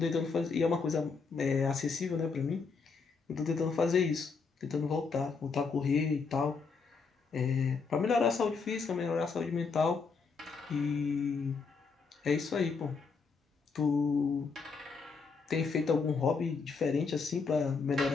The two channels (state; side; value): quieter; right; 5.0 dB